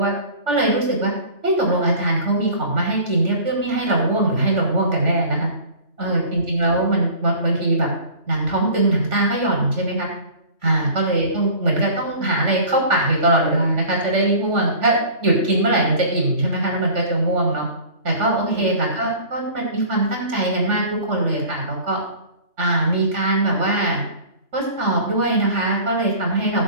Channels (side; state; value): left; late; 3.5 ms